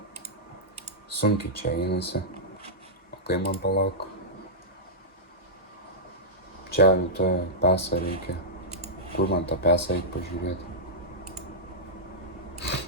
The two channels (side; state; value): both; normal; correlation -0.12